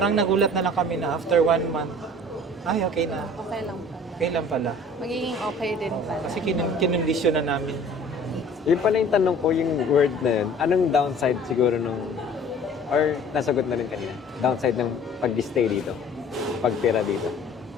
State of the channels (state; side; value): normal; both; correlation 0.49